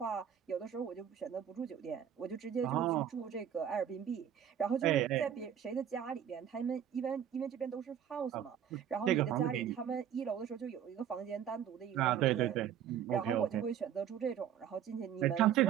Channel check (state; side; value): quieter; left; 9.4 dB